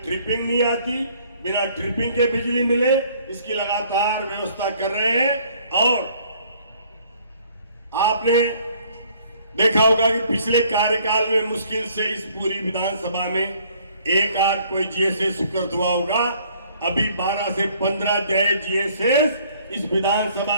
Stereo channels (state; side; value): inverted; both; correlation -0.60